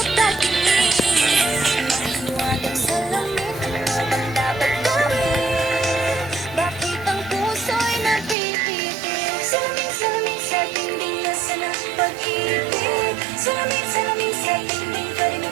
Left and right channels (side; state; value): left; drops out; at 8.3 s